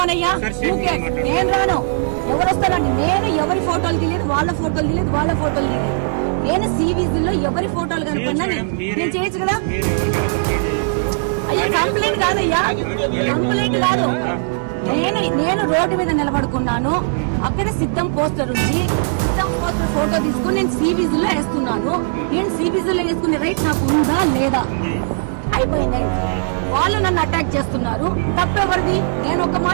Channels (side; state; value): left; silent; digital silence